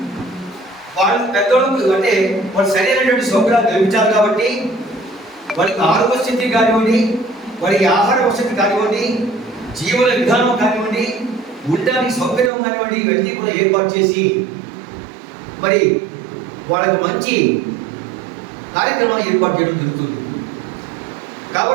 వాళ్ళు పెద్దోళ్ళకు అంటే వాళ్ళు సరైనటువంటి సౌకర్యాలు కల్పించాలి. కాబట్టి వారికి ఆరోగ్య స్థితి కానివ్వండి, వారికి ఆహార వసతి కానివ్వండి, జీవన విధానం కానివ్వండి, ఉండడానికి సౌకర్యం కానివ్వండి, ఇవన్నీ కూడా ఏర్పాటు చేసి మరి వాళ్ళకు మంచి కార్యక్రమాలు ఏర్పాటు చేయడం జరుగుతుంది.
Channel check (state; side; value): drops out; left; at 12.5 s